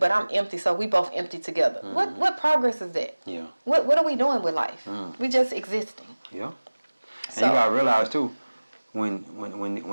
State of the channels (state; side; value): inverted; both; correlation -1.00